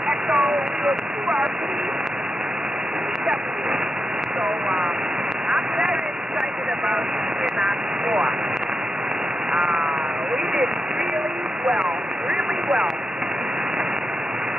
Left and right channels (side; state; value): both; normal; correlation 0.87